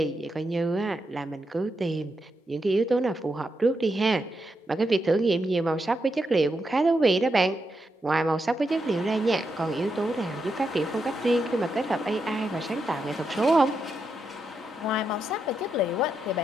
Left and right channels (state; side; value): normal; both; correlation 0.83